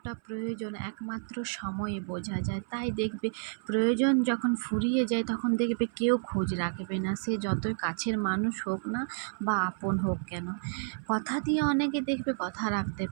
প্রয়োজন একমাত্র সময়ে বোঝা যায়। তাই দেখবে প্রয়োজন যখন ফুরিয়ে যায় তখন দেখবে কেউ খোঁজ রাখবে না, সে যতই কাছের মানুষ হোক না বা আপন হোক কেন। কথা দিয়ে অনেকে দেখবে কথা রাখতে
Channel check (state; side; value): silent; left; 57 dB below the other